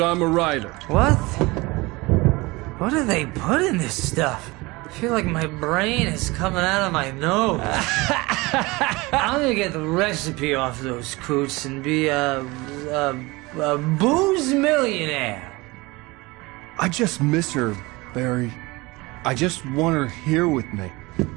a writer. What? What do they put in this stuff? I feel like my brain is coming out of my nose. I'm gonna get the recipe off those coots and be a booze millionaire. I just miss her, Barry. I just want her here with me.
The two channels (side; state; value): left; quieter; 23.0 dB